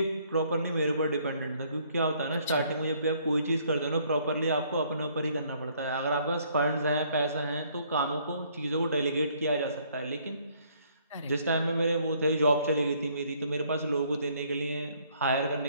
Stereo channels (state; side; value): inverted; both; correlation -0.65